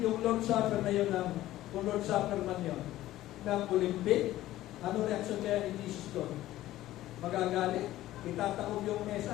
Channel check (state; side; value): quieter; right; 15.0 dB